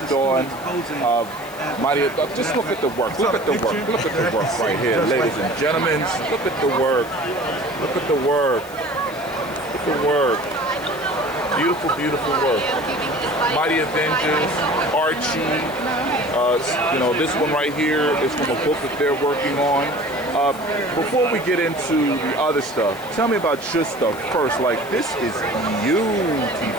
on. Just look at the work. Look at the work. Look at the work right here, ladies and gentlemen. Look at the work. Look at the work. Look at the work. Beautiful, beautiful work. Mighty Avengers, Archie. You know, this one right here is from a book that they're working on. Before we get into the other stuff, tell me about your stuff first. Like, this is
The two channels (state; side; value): noise; left; hiss, 19 dB below the sound